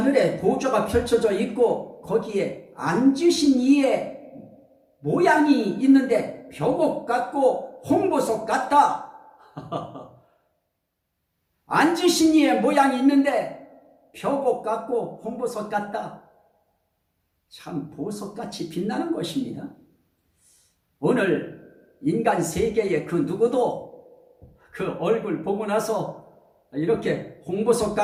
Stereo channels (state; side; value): identical; both; correlation 1.00